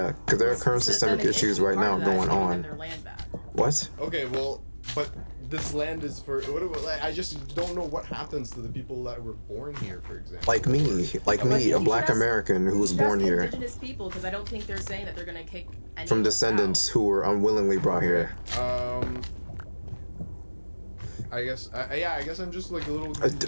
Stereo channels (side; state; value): both; inverted; correlation -1.00